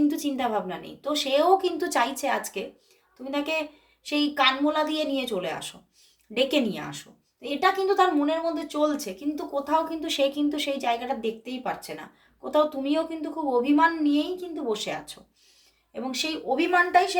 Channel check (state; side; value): identical; both; correlation 1.00